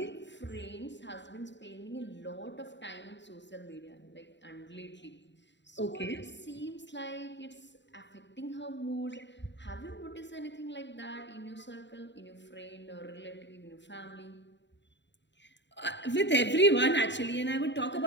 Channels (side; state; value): right; late; 0.52 ms